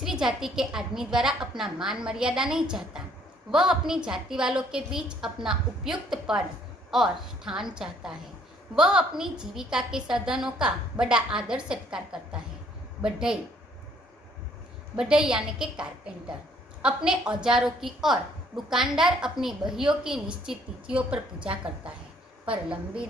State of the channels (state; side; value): normal; both; correlation 0.63